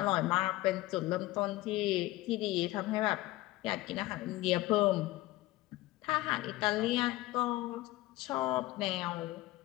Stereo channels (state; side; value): quieter; right; 18.2 dB